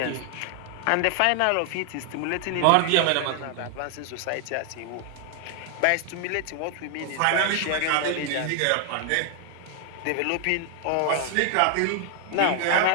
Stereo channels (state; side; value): different; both; correlation 0.00